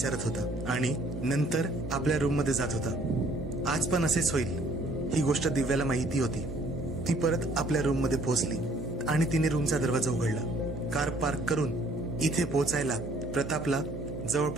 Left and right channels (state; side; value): noise; right; hum, 8 dB below the sound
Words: होता आणि नंतर आपल्या रूम मध्ये जात होता. आज पण असेच होईल ही गोष्ट दिव्याला माहिती होती. ती परत आपल्या रूम मध्ये पोहोचली आणि तिने रूमचा दरवाजा उघडला. कार पार्क करून इथे पोहोचायला प्रतापला